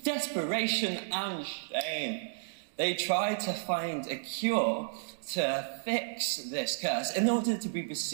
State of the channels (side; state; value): left; silent; digital silence